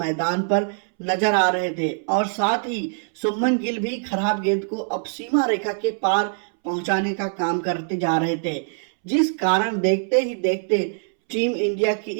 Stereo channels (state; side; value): silent; left; 63 dB below the other